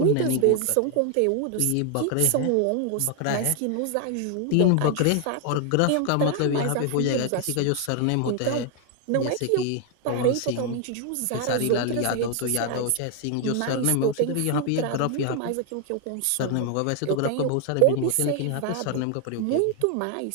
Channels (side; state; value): both; different; correlation 0.00